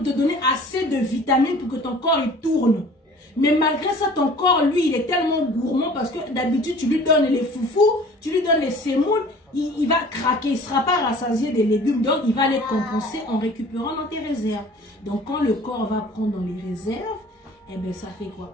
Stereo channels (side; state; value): both; normal; correlation 0.47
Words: te donner assez de vitamines pour que ton corps il tourne. Mais malgré ça, ton corps, lui, il est tellement gourmand parce que d'habitude, tu lui donnes les foufous, tu lui donnes les sémoules, il va craquer, il ne sera pas rassasié des légumes. Donc, il va les compenser en récupérant dans tes réserves. Donc, quand le corps va prendre dans les réserves, eh bien, ça fait